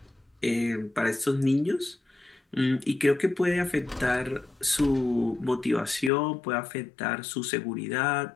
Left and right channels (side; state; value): right; drops out; at 6.1 s